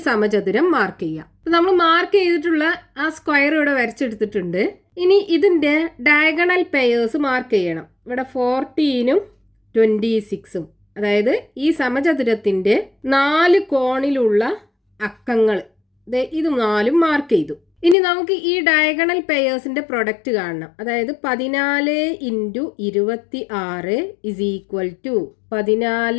സമചതുരം മാർക്ക് ചെയ്യാം. നമ്മൾ മാർക്ക് ചെയ്തിട്ടുള്ള ആ സ്ക്വയർ ഇവിടെ വരച്ചെടുത്തിട്ടുണ്ട്. ഇനി ഇതിന്റെ ഡയഗണൽ പെയേഴ്സ് മാർക്ക് ചെയ്യണം. ഇവിടെ 14ഉം 26ഉം, അതായത് ഈ സമചതുരത്തിന്റെ 4 കോണിലുള്ള അക്കങ്ങൾ ഇത് 4ഉം മാർക്ക് ചെയ്തു. ഇനി നമുക്ക് ഈ ഡയഗണൽ പെയേഴ്സിന്റെ പ്രൊഡക്റ്റ് കാണണം. അതായത് 14 × 26 is equal to 14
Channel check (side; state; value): right; drops out; at 17.9 s